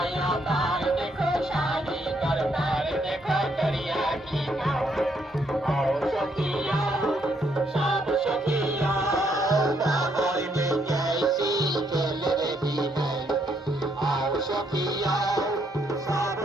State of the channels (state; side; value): normal; both; correlation 0.73